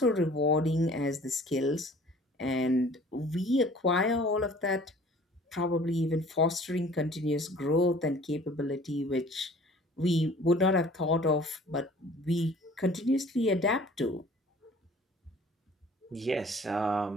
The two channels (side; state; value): both; normal; correlation 0.50